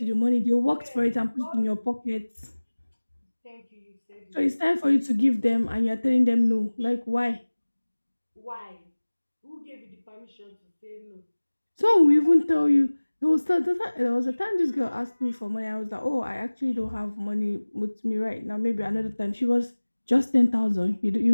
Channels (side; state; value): both; inverted; correlation -1.00